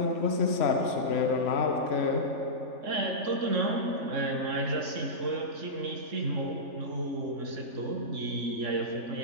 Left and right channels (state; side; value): late; left; 3.4 ms